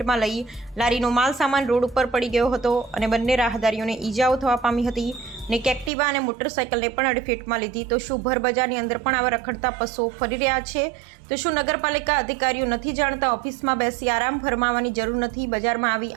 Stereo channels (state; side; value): drops out; left; at 5.9 s